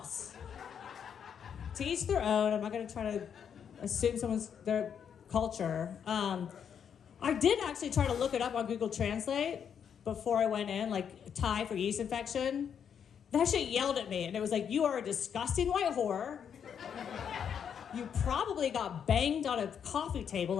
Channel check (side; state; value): right; quieter; 7.9 dB